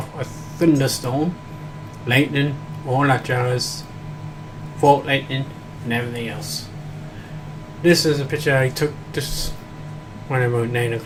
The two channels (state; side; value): identical; both; correlation 1.00